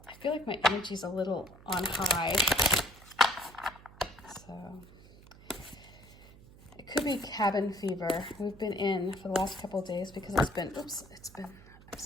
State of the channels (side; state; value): right; noise; hum, 21 dB below the sound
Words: feel like my energy's a little on high. So it could be cabin fever. We've been in for the last couple of days because I'm just gonna